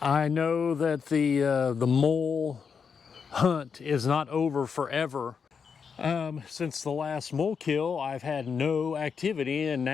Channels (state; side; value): quieter; right; 6.2 dB